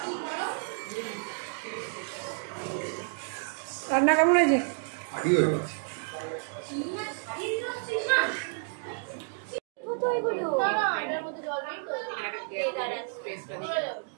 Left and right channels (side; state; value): left; silent; 58 dB below the other